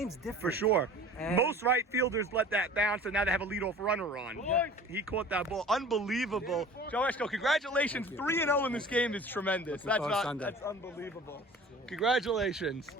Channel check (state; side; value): normal; both; correlation 0.43